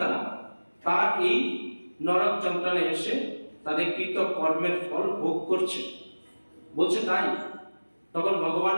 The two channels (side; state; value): both; inverted; correlation -1.00